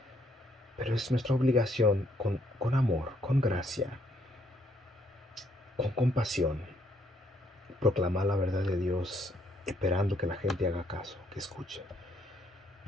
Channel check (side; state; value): both; normal; correlation 0.70